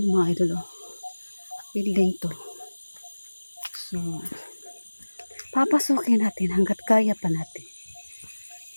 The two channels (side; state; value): both; inverted; correlation -1.00